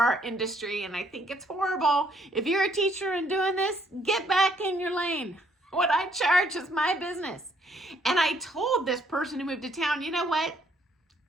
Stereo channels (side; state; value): both; normal; correlation 0.67